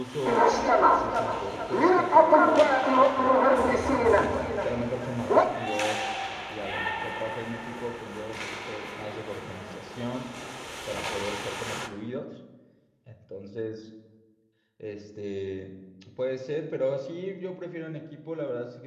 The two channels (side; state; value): both; identical; correlation 1.00